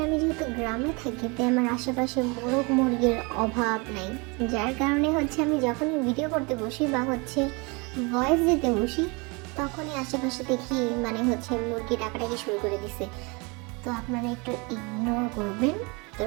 আমি যেহেতু গ্রামে থাকি, তাই আমার আশেপাশে মোরগ মুরগির অভাব নাই, যার কারণে আমি যখনই ভিডিও করতে বসি বা ভয়েস দিতে বসি, তখনই আশেপাশে দেখি মুরগি ডাকাডাকি শুরু করে দিছে। তো আপনারা একটু ইগনোর করবেন, তো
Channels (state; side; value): quieter; left; 29.1 dB